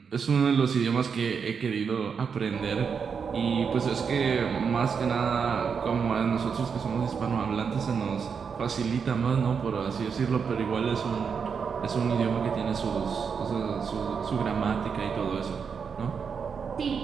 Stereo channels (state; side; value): quieter; left; 6.2 dB